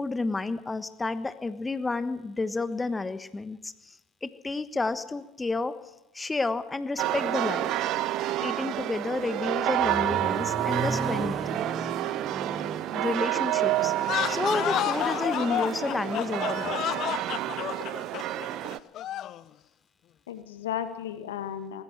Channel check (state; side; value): normal; both; correlation 0.57